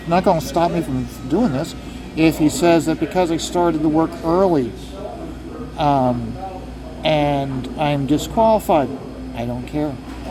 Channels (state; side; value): identical; both; correlation 1.00